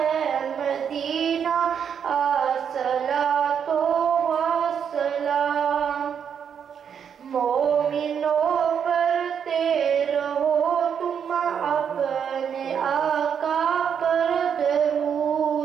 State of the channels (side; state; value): left; quieter; 7.7 dB